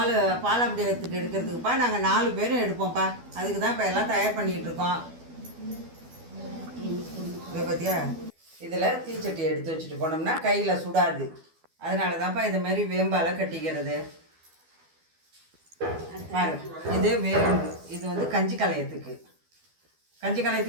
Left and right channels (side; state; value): left; late; 12 ms